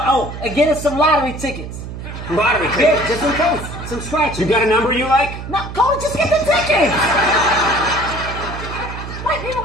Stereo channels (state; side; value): noise; right; hum, 9 dB below the sound